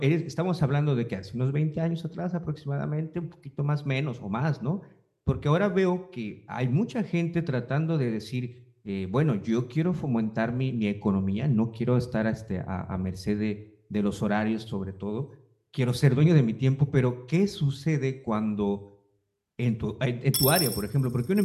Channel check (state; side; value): identical; both; correlation 1.00